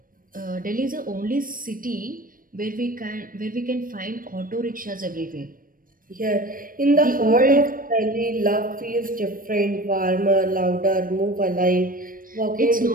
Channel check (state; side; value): late; left; 0.41 ms